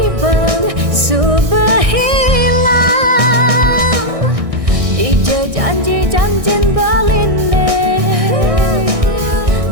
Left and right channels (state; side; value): late; left; 1.6 ms